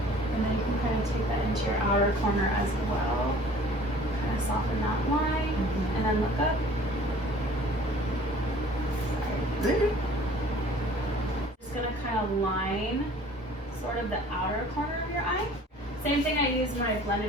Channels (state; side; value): normal; both; correlation 0.50